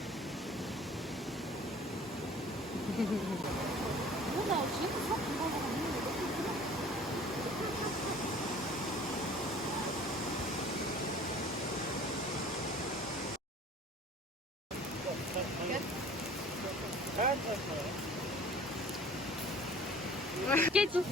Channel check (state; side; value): normal; both; correlation 0.48